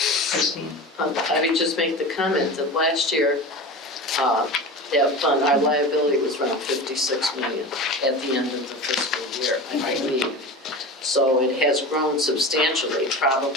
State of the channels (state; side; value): normal; both; correlation 0.30